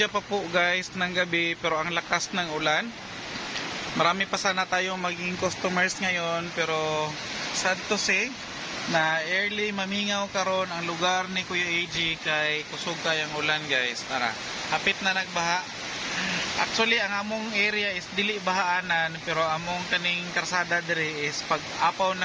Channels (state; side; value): identical; both; correlation 1.00